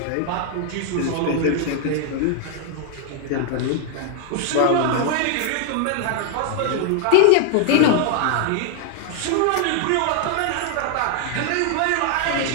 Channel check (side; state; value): both; different; correlation 0.00